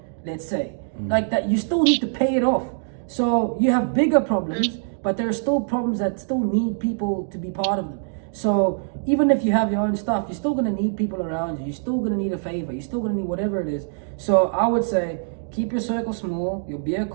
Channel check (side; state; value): left; silent; digital silence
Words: Let's say like that. You still need to pay it off. So you have bigger problems, but there are still problems that still need people to be part of them. So even if you have your own stuff, you're still going to need people around you. You're still going to need a favor. You're still going to need whatever it is. So I would say keep your circle small, your beer